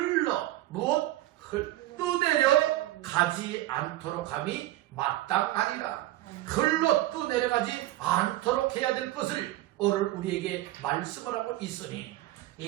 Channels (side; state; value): left; quieter; 16.0 dB